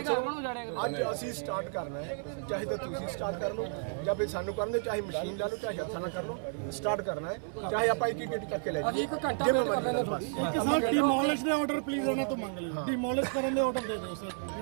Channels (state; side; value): silent; left; 56 dB below the other